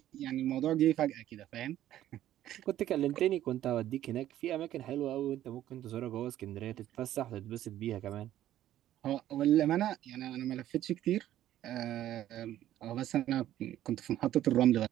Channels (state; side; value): quieter; left; 12.7 dB